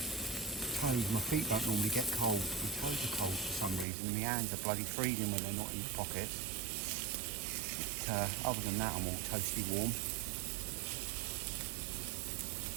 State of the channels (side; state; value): left; drops out; at 3.9 s